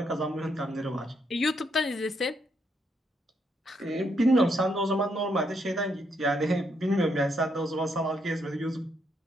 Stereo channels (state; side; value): normal; both; correlation 0.76